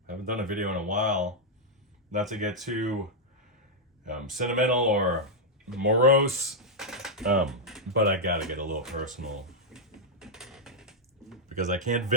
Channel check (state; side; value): normal; both; correlation -0.04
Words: Haven't done a video in a while. Not to get too sentimental or morose, but I gotta get a little personal. Because I can't